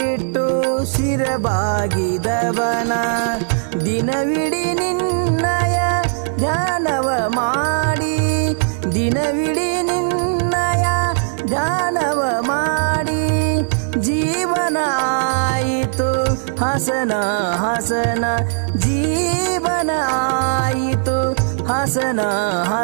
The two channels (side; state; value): left; silent; 60 dB below the other